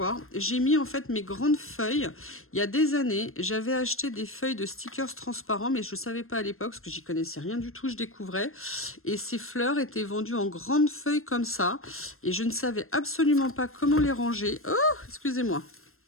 J'ai mis en fait mes grandes feuilles. Il y a des années, j'avais acheté des feuilles de stickers transparents, mais je ne savais pas à l'époque, parce que j'y connaissais rien du tout, je découvrais. Et ces fleurs étaient vendues en grandes feuilles comme ça. Et je ne savais absolument pas comment les ranger. Oh, excusez-moi.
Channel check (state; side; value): late; right; 0.62 ms